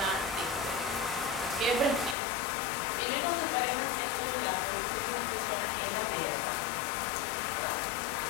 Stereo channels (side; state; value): right; drops out; at 2.1 s